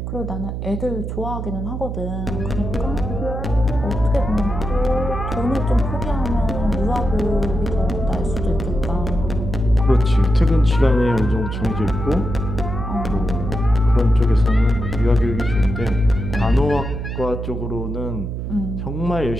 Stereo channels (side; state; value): right; noise; hum, 5 dB below the sound